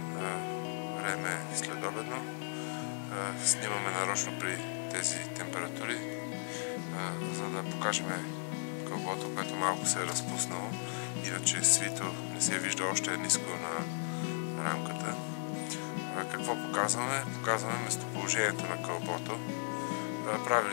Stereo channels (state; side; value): silent; right; 54 dB below the other